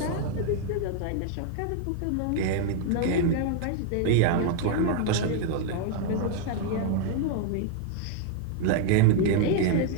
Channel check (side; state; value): both; different; correlation 0.00